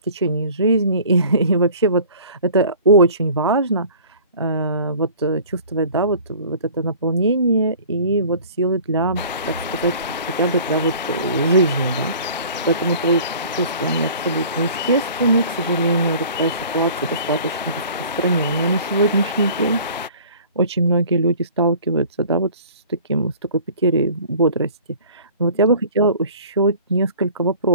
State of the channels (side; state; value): both; inverted; correlation -0.47